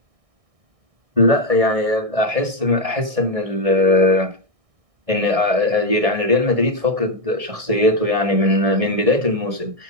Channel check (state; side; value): late; left; 1.6 ms